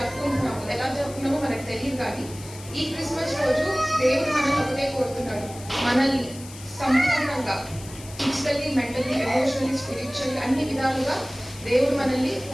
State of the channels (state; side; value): noise; left; hiss, 17 dB below the sound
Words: ఎలా జరుపుకున్నామో మనకు తెలియదు, కానీ ఈ క్రిస్మస్ రోజు దేవుడు మనల్ని ఒకటే కోరుతున్నాడు, మనల్ని సంపూర్ణంగా ఫిజికల్లీ, మెంటల్లీ, ఎమోషనల్లీ, స్పిరిచువల్లీ అన్ని విధాలుగా దేవుడు మనల్ని